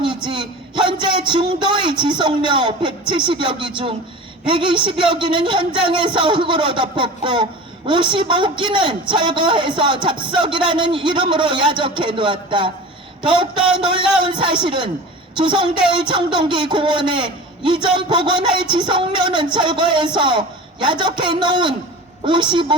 현재 중도의 지속료 170여 기 중 120여 기는 현장에서 흙으로 덮었고 55기는 철거해서 잡석이라는 이름으로 야적해 놓았다. 더욱더 놀라운 사실은 조성될 청동기 공원에 이전 복원할 지속료는 철거해서 야적해 놓은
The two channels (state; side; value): normal; both; correlation 0.35